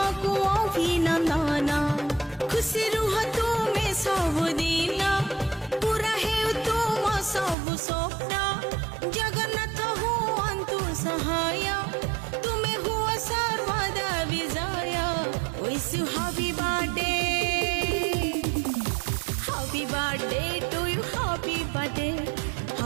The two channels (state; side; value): drops out; left; at 7.6 s